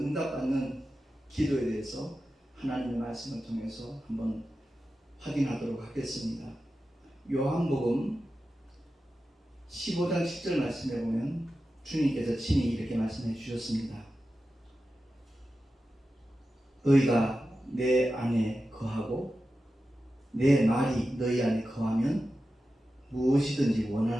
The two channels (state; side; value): normal; both; correlation 0.92